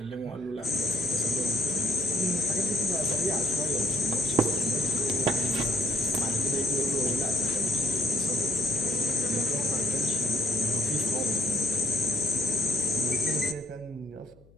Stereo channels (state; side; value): noise; left; hum, 27 dB below the sound